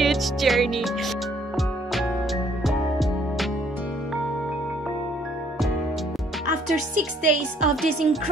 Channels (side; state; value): both; normal; correlation 0.63